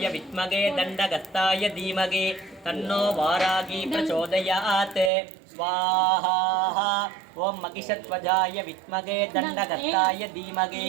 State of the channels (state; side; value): drops out; left; at 5.1 s